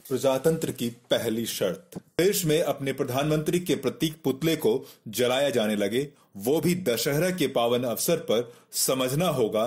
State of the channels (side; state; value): both; identical; correlation 1.00